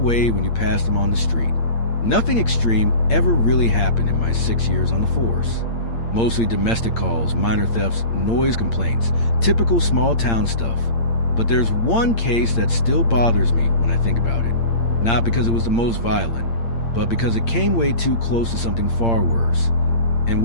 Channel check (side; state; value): right; late; 8.7 ms